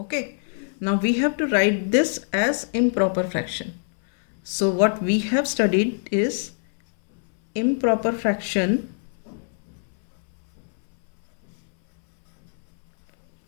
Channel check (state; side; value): silent; right; 63 dB below the other